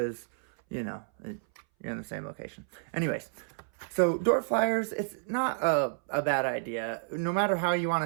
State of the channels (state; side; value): silent; left; 58 dB below the other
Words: you're you're in the same location. Anyways, so door flyers, it's not a bad idea, no matter how you